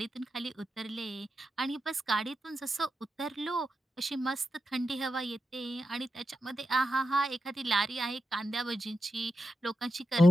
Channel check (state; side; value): normal; both; correlation 0.88